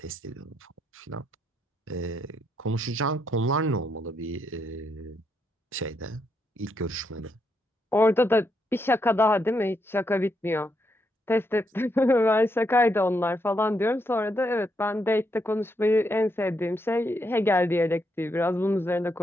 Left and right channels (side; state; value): both; normal; correlation 0.78